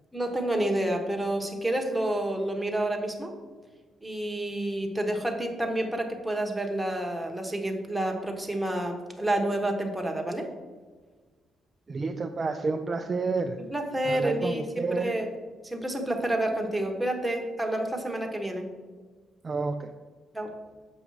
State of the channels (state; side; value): normal; both; correlation 0.87